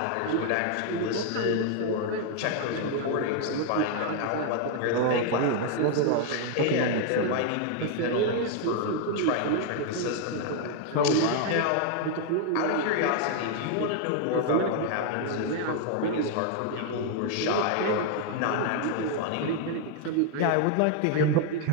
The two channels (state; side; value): different; both; correlation 0.00